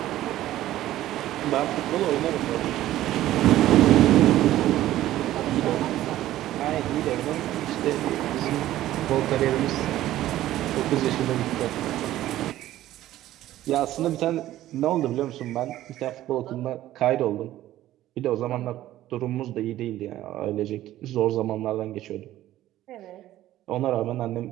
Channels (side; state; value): left; quieter; 14.2 dB